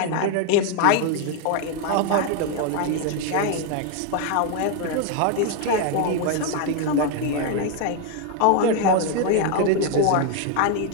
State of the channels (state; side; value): different; both; correlation 0.01